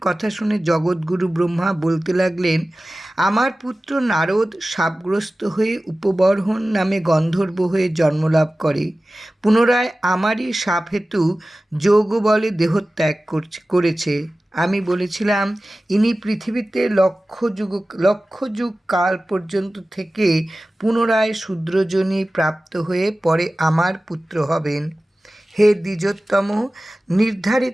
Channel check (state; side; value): normal; both; correlation 0.96